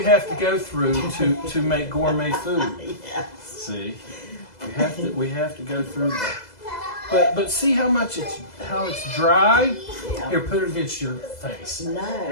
have to go through to make gourmet food. Yes. See, we have to go through that. But see how it's dry. Yeah. Here, put it against your face. No.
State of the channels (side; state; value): right; late; 2.0 ms